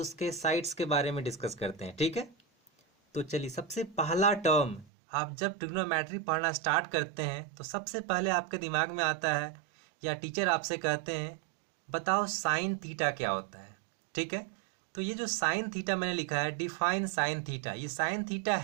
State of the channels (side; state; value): left; drops out; at 4.9 s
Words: साइड्स के बारे में डिस्कस करते हैं। ठीक है, तो चलिए सबसे पहला टर्म, आप जब ट्रिग्नोमेट्री पढ़ना स्टार्ट करते हैं तो सबसे पहले आपके दिमाग में आता है या टीचर आपसे कहते हैं बताओ साइन थीटा क्या होता है। ठीक है, तो ये जो साइन थीटा मैंने लिखा है, डिफाइन साइन थीटा, ये साइन थीटा